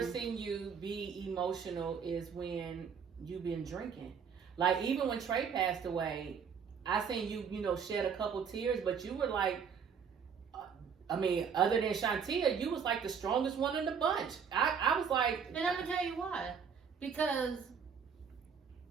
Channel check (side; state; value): left; quieter; 6.8 dB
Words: seen you be emotional is when you've been drinking. Like, even when Trey passed away, I seen you, shed a couple tears, but you were like, other than Shantia, you was like the strongest one in the bunch. I was like... And I'm going to tell you why. Because